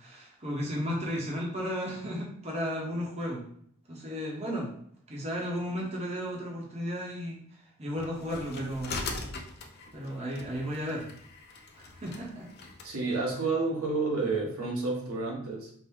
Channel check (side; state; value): both; normal; correlation 0.51